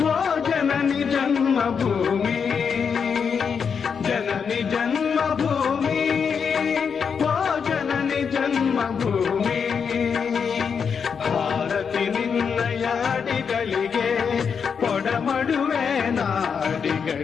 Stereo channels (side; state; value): right; quieter; 6.4 dB